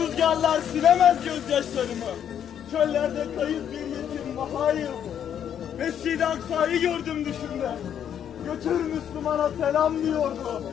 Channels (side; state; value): right; quieter; 9.2 dB